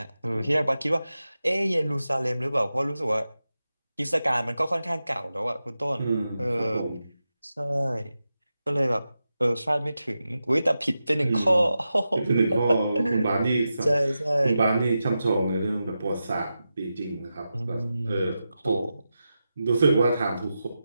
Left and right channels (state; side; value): inverted; both; correlation -0.91